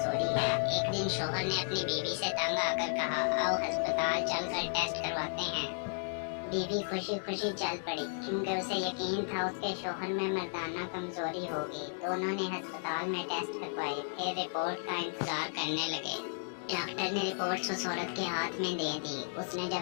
है। एक दिन शोहर ने अपनी बीवी से तंग आकर कहा, आओ अस्पताल चलकर टेस्ट करवाते हैं। बीवी खुशी खुशी चल पड़ी क्योंकि उसे यकीन था उसके शोहर में मर्दाना कमजोरी होगी। दोनों ने अस्पताल में टेस्ट करवाए, फिर रिपोर्ट का इंतजार करने लगे। डॉक्टर ने रिपोर्ट्स उस औरत के हाथ में दे दी। उसने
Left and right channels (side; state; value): right; silent; digital silence